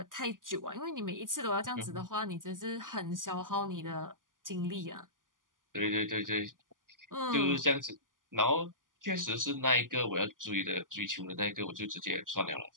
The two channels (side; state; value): left; late; 0.89 ms